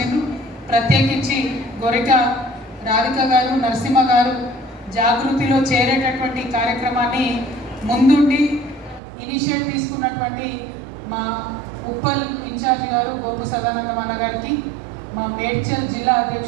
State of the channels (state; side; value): drops out; left; at 9.0 s